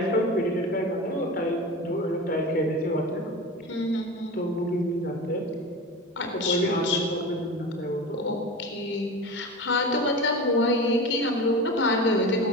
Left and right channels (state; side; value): normal; both; correlation 0.30